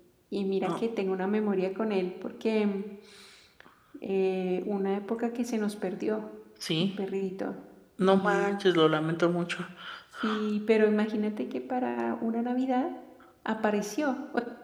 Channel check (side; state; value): both; identical; correlation 1.00